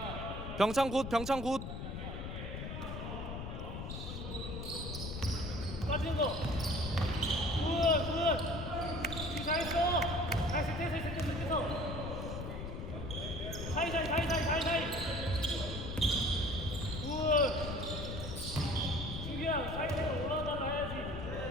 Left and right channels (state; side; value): noise; left; rumble, 6 dB below the sound